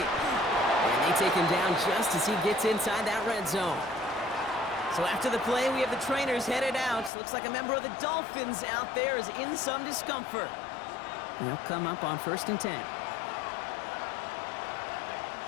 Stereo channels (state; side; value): drops out; right; at 7.1 s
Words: And they take him down just as he gets inside that red zone. So after the play, we have the trainers headed out. Looks like a member of the Dolphins out there is in some discomfort. They'll come up on 1st and 10.